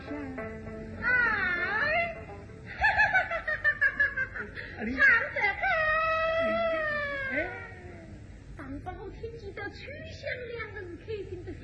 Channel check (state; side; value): identical; both; correlation 1.00